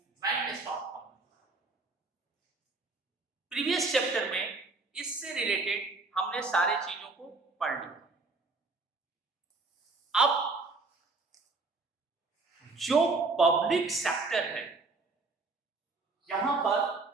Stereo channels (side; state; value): left; quieter; 3.7 dB